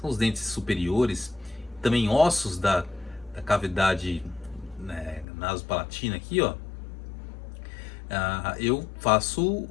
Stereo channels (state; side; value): drops out; right; at 5.2 s